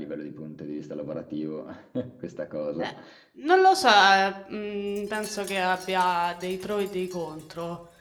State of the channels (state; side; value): identical; both; correlation 1.00